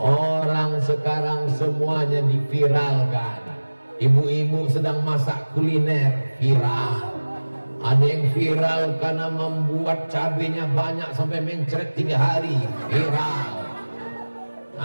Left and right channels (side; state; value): both; inverted; correlation -1.00